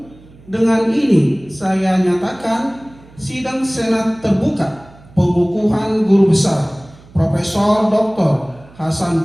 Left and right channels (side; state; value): right; noise; hum, 24 dB below the sound